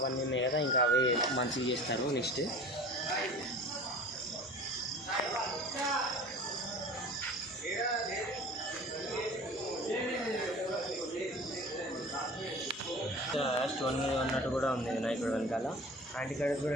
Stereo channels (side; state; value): both; normal; correlation 0.41